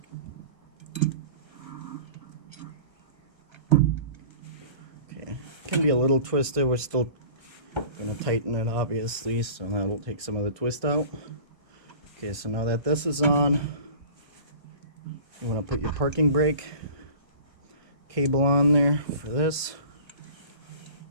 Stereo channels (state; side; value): late; left; 1.4 ms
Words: Okay, can be a little twisted. We're still going to tighten it, obviously, so that'll take some of the twist out. Okay, so now that this is on, you want to put your parking brake cable on there for this.